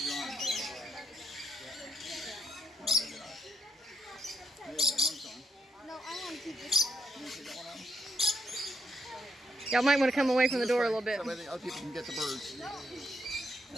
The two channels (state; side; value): normal; both; correlation 0.75